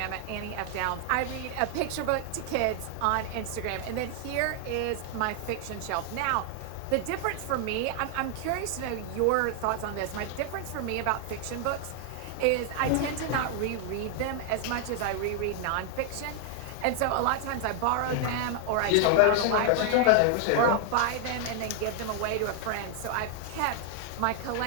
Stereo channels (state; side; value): different; both; correlation 0.00